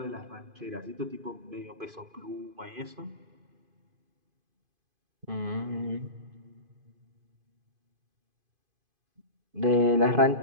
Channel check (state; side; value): late; left; 2.5 ms